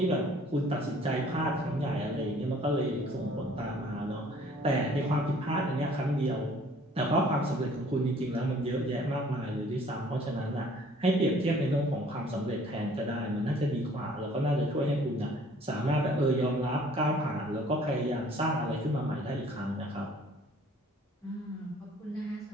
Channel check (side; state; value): both; normal; correlation 0.55